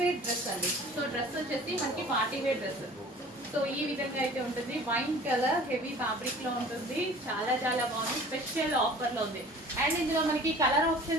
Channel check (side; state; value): both; normal; correlation 0.46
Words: వేర్ డ్రెస్ అండి. సో డ్రెస్ వచ్చేసి మనకి పార్టీ వేర్ డ్రెస్. సో ఈ విధంగా అయితే ఉంటుంది, వైన్ కలర్ హెవీ ఫ్యాబ్రిక్ లో ఉంటుంది, చాలా చాలా బాగుంది, స్పెషల్ ఆఫర్ లో ఉంది. అండ్ ఇందులో మనకి కలర్